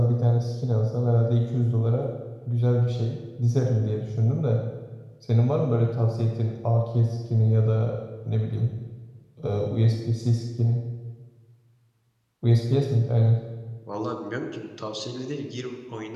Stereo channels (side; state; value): both; identical; correlation 1.00